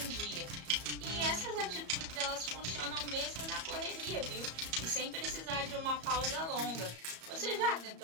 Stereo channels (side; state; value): left; late; 34 ms